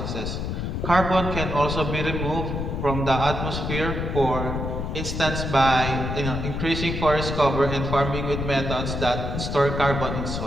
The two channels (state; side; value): noise; left; rumble, 3 dB below the sound